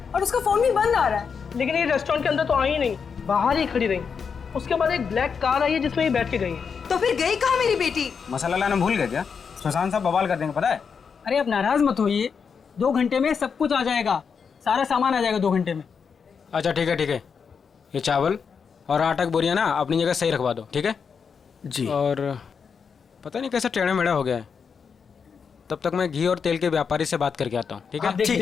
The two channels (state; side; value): quieter; right; 6.1 dB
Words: और उसका फोन भी बंद आ रहा है। लेकिन ये रेस्टोरेंट के अंदर तो आई ही नहीं, बाहर ही खड़ी रही। उसके बाद एक ब्लैक कार आई है जिसमें ये बैठ के गई है। तो फिर गई कहाँ मेरी बेटी? मसाला लाना भूल गए क्या? सुशांत साहब बवाल कर देंगे पता है। अरे अब नाराज मत होइए, 2 घंटे में सब कुछ आ जाएगा, सारा सामान आ जाएगा 2 घंटे में। अच्छा ठीक है ठीक है, ये चावल और आटा की बोरियां ना अपनी जगह सही रखवा दो, ठीक है जी। और पता नहीं कैसा टेढ़ा मेढ़ा हो गया है, तब तक मैं घी और तेल के व्यापारी से बात करके आता हूँ, ठीक है? ठीक